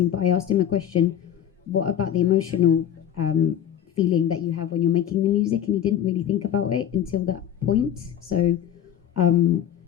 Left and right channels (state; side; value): quieter; right; 10.1 dB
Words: But I asked him a question, what about the emotional feeling that you have when you're making the music? And he didn't really think about it until that point. So